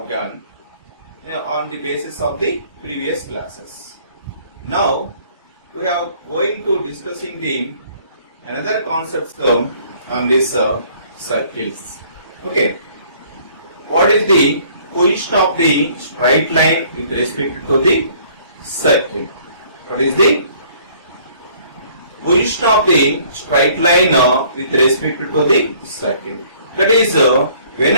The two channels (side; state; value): both; inverted; correlation -0.58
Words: done on the basis of the previous classes. Now we are going to discussing the another concepts on this circles. Okay, what is the position of the straight line with respect to the circle? What is the position of the straight line with respect to the circle? That is,